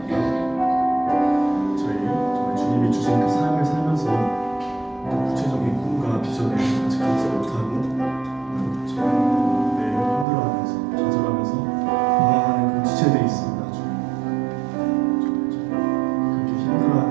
저희 정말 주님이 주신 그 삶을 살면서 구체적인 꿈과 비전을 아직 갖지 못하고 매일 힘들어하면서 좌절하면서 방황하는 그런 지체들이 있습니다. 그렇게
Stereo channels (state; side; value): drops out; left; at 10.2 s